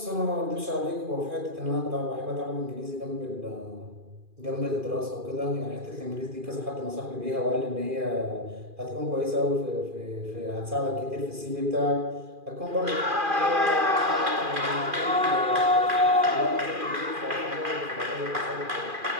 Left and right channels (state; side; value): late; left; 2.4 ms